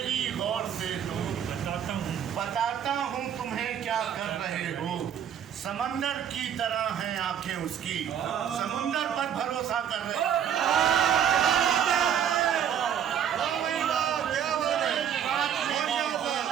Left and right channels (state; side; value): quieter; left; 9.0 dB